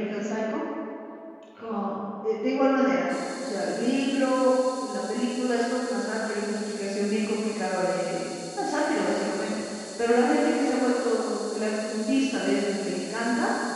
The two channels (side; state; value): both; identical; correlation 1.00